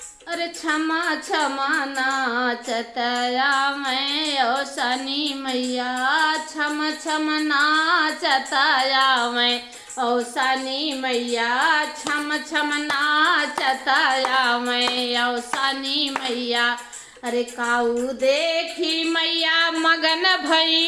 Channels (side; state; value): both; identical; correlation 1.00